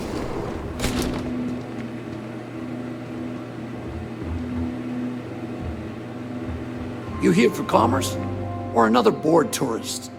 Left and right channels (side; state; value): both; identical; correlation 1.00